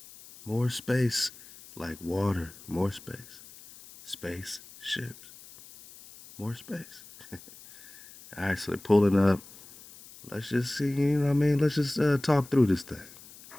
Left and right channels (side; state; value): left; noise; hiss, 20 dB below the sound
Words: More space, like water, more space. Space ships, more space. All right, so they're pulling up. Let's just see, you know what I mean? Let's just talk through this thing.